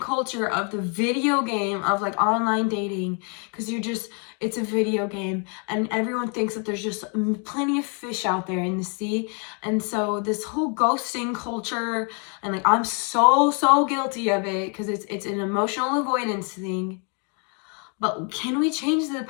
of the video game of like online dating, because it's a video game and everyone thinks that there's just plenty of fish out there in the sea. And so this whole ghosting culture, and like, I'm so guilty of it, because it's an emotional avoidance thing. But can we change the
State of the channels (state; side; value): quieter; right; 38.1 dB